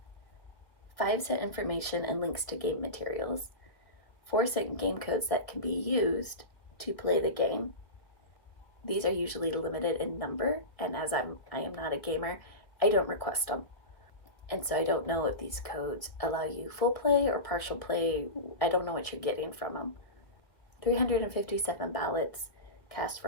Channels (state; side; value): late; right; 1.5 ms